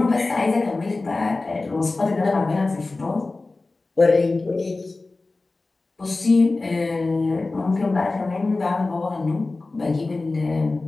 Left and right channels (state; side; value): quieter; right; 3.4 dB